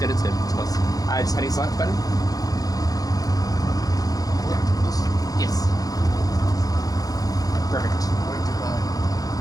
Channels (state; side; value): late; right; 0.18 ms